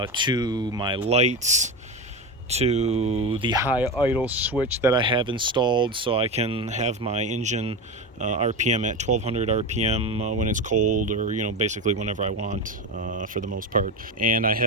to my lights, to the high idle switch that I have installed so I can have my engine RPM at 1200 RPM when it's cold, or basically whenever I want, for the most part. And I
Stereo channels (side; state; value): both; normal; correlation 0.19